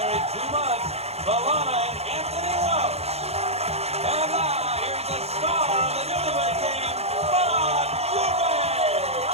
2 months, Valana and Anthony Welch. And now, here's the star of the Newlywed Game, Bob Dubay.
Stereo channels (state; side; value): late; left; 0.30 ms